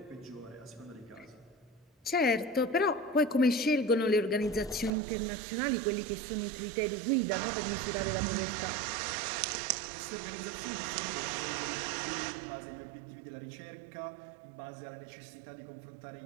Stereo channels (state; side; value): drops out; left; at 4.9 s